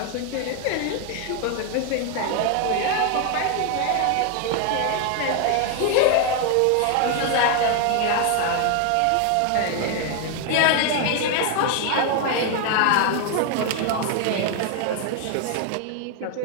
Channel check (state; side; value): different; both; correlation 0.01